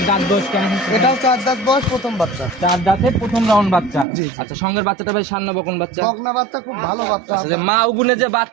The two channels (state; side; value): drops out; left; at 4.0 s